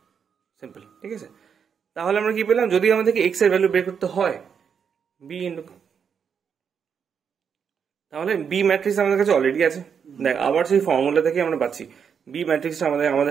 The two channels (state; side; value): quieter; left; 7.0 dB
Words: সিম্পল, ঠিক আছে। তাহলে আমরা কি পেলাম, যদি আমাদেরকে এক্স এর ভ্যালু বের করতে হয় বি ইন্টু, তাহলে বি ম্যাট্রিক্স আমাদের কাছে অলরেডি আছে। দেখ আবার সেই ফর্মুলা থেকে আমরা পাচ্ছি বি ম্যাট্রিক্সটা